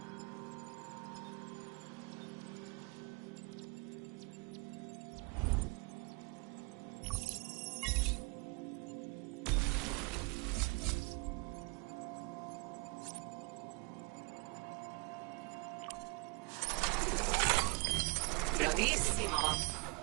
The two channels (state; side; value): quieter; left; 29.4 dB